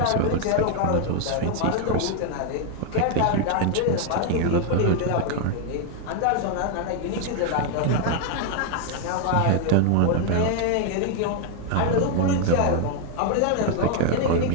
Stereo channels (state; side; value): different; both; correlation 0.00